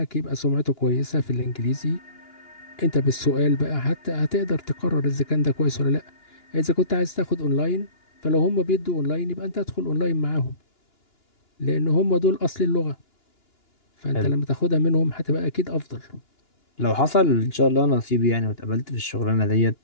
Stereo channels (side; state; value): right; late; 2.9 ms